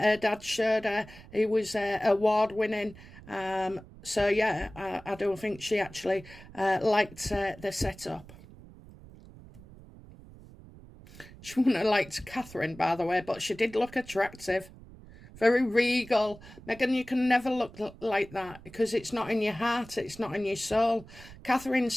dad showed her. He was award winning. So yeah, I don't think she actually liked the setup. She wouldn't have liked Catherine, by the way, but she did look attractive. Very regal. Meghan, you can never look like that, because it's not in your heart, it's not in your soul. Catherine's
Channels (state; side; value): noise; right; rumble, 19 dB below the sound